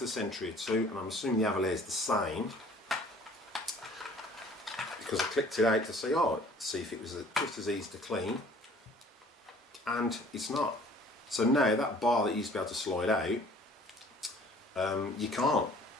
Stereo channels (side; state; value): both; normal; correlation 0.53